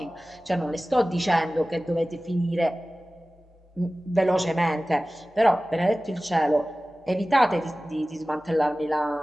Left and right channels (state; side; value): normal; both; correlation 0.97